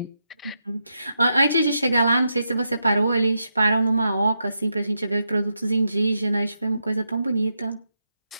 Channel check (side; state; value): both; inverted; correlation -0.84